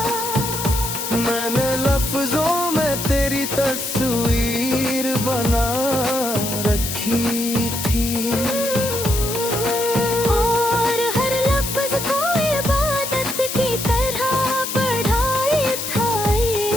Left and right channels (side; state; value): left; noise; hiss, 5 dB below the sound